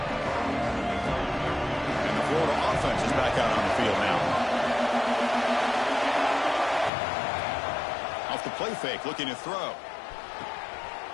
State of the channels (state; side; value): drops out; right; at 6.9 s